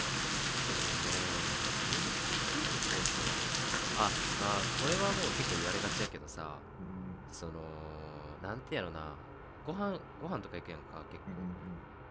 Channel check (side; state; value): both; identical; correlation 1.00